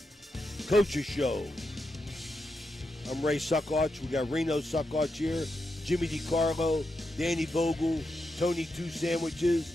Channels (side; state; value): both; normal; correlation 0.86